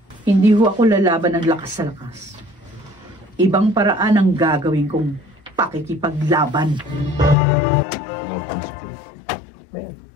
Hindi ho ako lalaban ng lakas sa lakas. Ibang paraan ang gagawin kong pakikipaglaban.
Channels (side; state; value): right; drops out; at 7.4 s